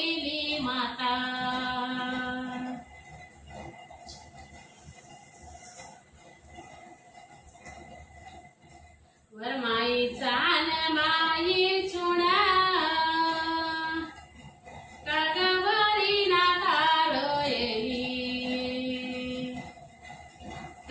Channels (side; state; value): both; identical; correlation 1.00